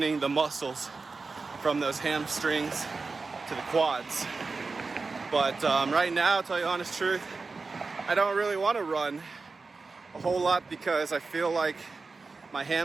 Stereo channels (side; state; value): left; quieter; 4.1 dB